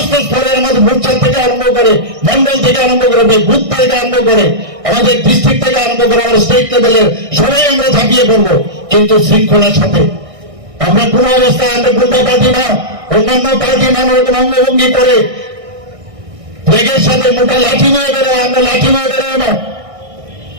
স্তরের আমাদের বুথ থেকে আরম্ভ করে, মন্ডল থেকে আরম্ভ করে, বুথ থেকে আরম্ভ করে, আমাদের ডিস্ট্রিক্ট থেকে আরম্ভ করে, আমাদের স্টেট লেভেলের সবাই আমরা ঝাঁপিয়ে পড়বো, কিন্তু শৃঙ্খলার সাথে। আমরা কোন অবস্থায় আমরা গুন্ডা পার্টি না, অন্যান্য পার্টি নানা রকম অঙ্গভঙ্গি করে ফ্ল্যাগের সাথে মোটা লাঠি নিয়ে বেরোয়, আমরা লাঠি নিয়ে বেরোয় না।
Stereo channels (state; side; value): late; left; 1.6 ms